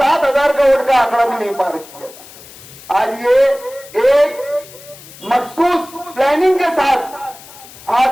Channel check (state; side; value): noise; left; hiss, 19 dB below the sound